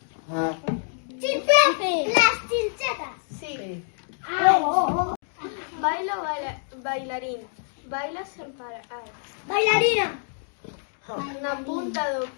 Las chinchetas. Sí. Sí. Baila o bailarín. Baila sen parar. Bailarina. Na punta do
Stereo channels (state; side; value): silent; right; digital silence